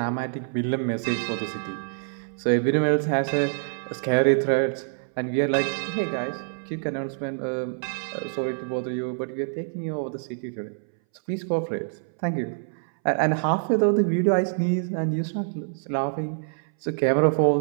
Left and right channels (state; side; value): silent; left; 61 dB below the other